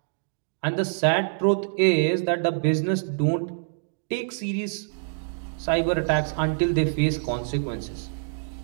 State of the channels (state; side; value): silent; left; digital silence